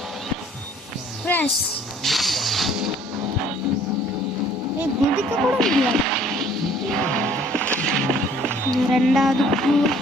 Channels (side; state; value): both; normal; correlation 0.56